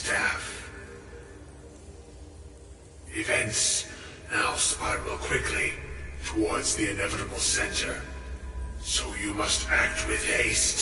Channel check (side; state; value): both; identical; correlation 1.00